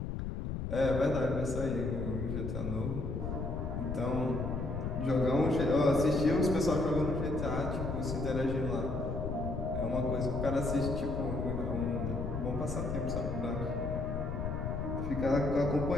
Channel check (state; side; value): noise; left; rumble, 3 dB below the sound